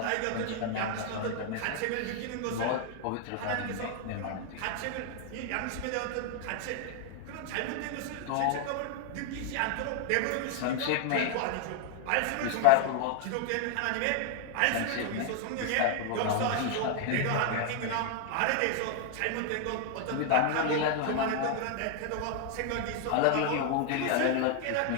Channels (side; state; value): both; different; correlation 0.00